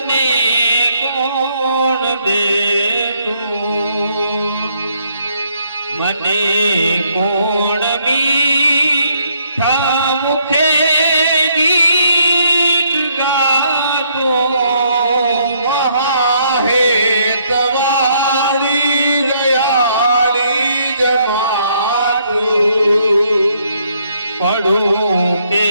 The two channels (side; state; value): both; inverted; correlation -0.70